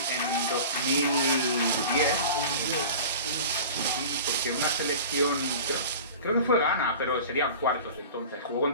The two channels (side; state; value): both; inverted; correlation -0.37